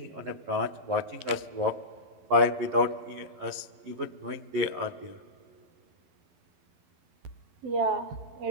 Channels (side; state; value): left; late; 11 ms